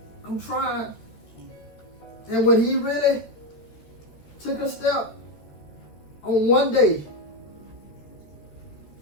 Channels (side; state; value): right; late; 13 ms